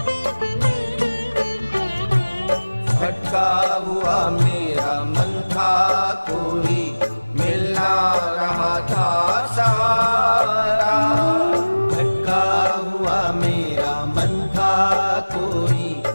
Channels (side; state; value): both; inverted; correlation -1.00